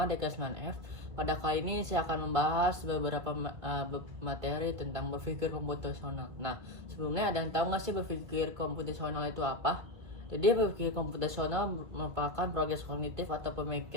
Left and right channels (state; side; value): late; left; 2.0 ms